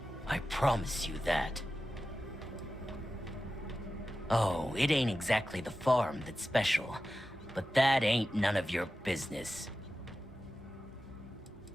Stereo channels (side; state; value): both; normal; correlation 0.93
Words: I promise you that. Oh, it ain't exactly the farm that's special, but that ain't none of your business.